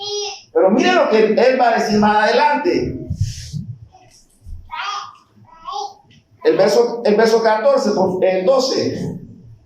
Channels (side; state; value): both; identical; correlation 1.00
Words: Pero miren lo que Él va a decir más adelante. El verso 14, el 12.